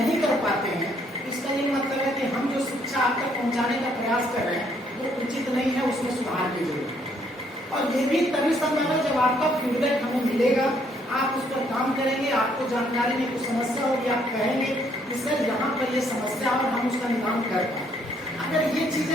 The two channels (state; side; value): normal; both; correlation 0.68